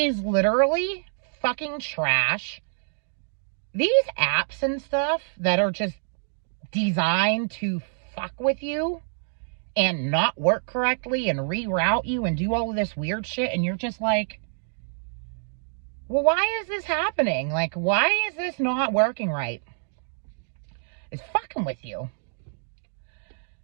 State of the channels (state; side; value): silent; left; digital silence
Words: literally fucking trash. These apps and stuff that are just designed to fuck with you and not work correctly and reroute you and do all of this weird shit, and you're just like, well, why is this happening? Like, why is this not working right? It's fucking with you.